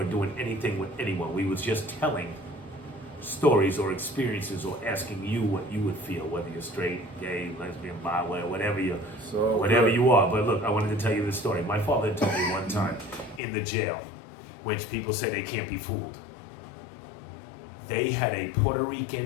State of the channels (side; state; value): right; drops out; at 13.4 s